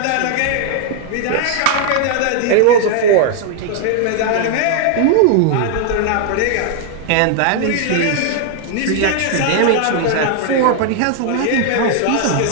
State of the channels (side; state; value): both; different; correlation 0.00